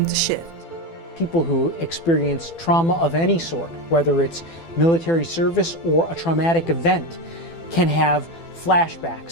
to shift. People who experience trauma of any sort, whether it's military service or a traumatic event, can have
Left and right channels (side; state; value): right; late; 12 ms